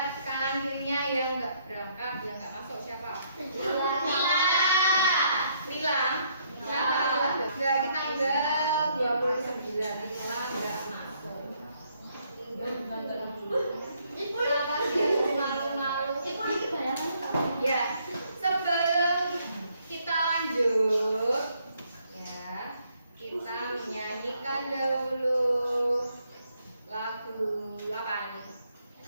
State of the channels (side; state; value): both; inverted; correlation -0.70